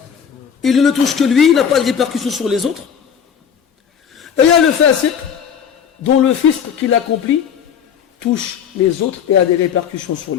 Il ne le touche que lui, il n'a pas de répercussions sur les autres. Et il y a le fasiq dont le fisq qu'il accomplit touche les autres et a des répercussions sur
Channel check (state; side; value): quieter; right; 7.8 dB